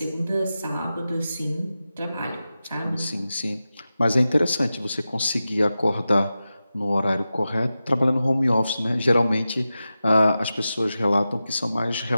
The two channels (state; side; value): inverted; both; correlation -0.93